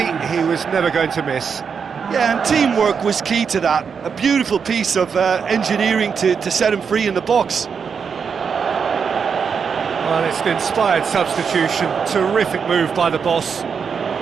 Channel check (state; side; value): quieter; left; 6.3 dB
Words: he was never going to miss. Yeah, and teamwork was key to that. A beautiful piece of engineering to set him free in the box. Well, it's an inspired substitution. Terrific move by the boss.